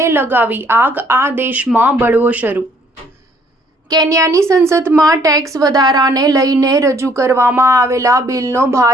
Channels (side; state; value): both; normal; correlation 0.63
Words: લગાવી આગ, આ દેશમાં બળવો શરૂ। કેન્યાની સંસદમાં ટેક્સ વધારાને લઈને રજૂ કરવામાં આવેલા બિલનો